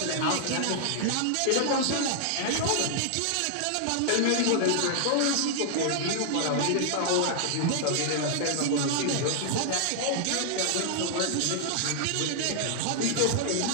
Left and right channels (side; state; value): both; different; correlation 0.00